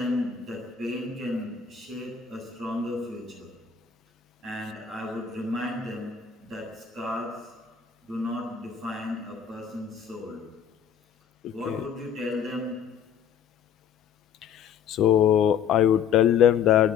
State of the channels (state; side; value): quieter; right; 7.9 dB